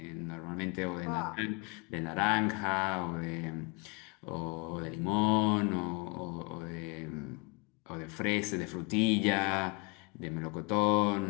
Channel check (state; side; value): quieter; right; 29.5 dB